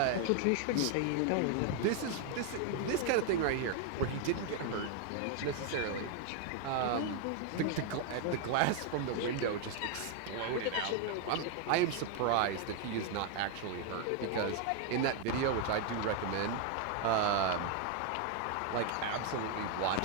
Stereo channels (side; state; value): both; different; correlation 0.00